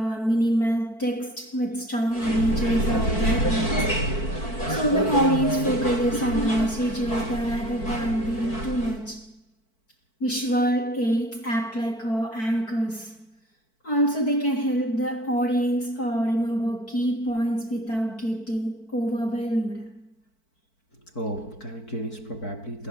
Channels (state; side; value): late; right; 4.5 ms